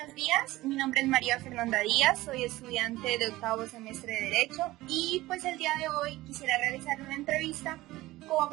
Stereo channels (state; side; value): quieter; left; 17.9 dB